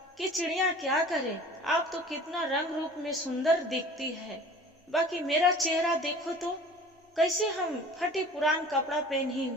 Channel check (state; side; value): normal; both; correlation 0.44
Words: कि चिड़िया क्या करे, आप तो कितना रंग रूप में सुंदर दिखती है, बाकी मेरा चेहरा देखो तो कैसे हम फटे पुरान कपड़ा पहनी